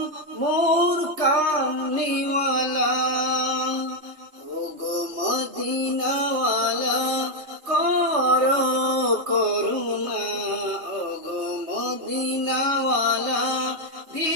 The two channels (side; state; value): left; late; 3.2 ms